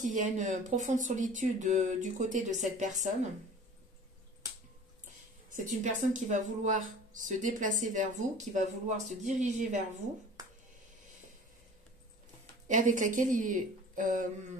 y a une profonde solitude du côté de cette personne. C'est une personne qui va vouloir se déplacer vers vous, qui va vouloir se diriger vers vous, et avec laquelle il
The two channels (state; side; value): normal; both; correlation 0.43